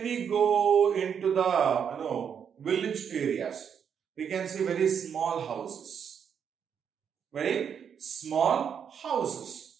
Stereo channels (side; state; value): left; quieter; 7.6 dB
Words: we go into the village areas, we can see very small houses. Very small